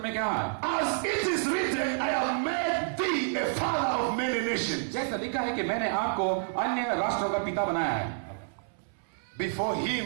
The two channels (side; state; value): left; silent; 58 dB below the other